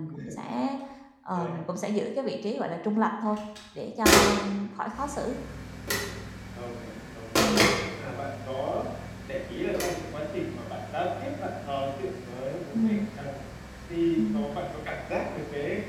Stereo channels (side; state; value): both; identical; correlation 1.00